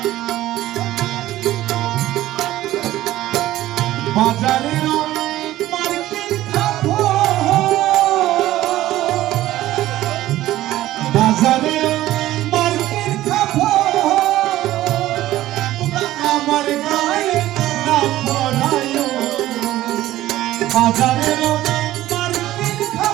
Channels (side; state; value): left; quieter; 15.0 dB